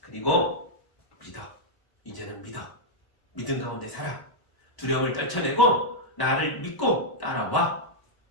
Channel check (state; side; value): late; right; 1.0 ms